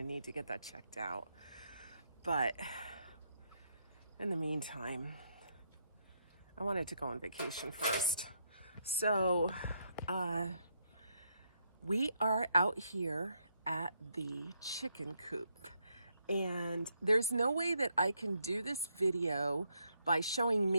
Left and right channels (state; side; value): inverted; both; correlation -0.76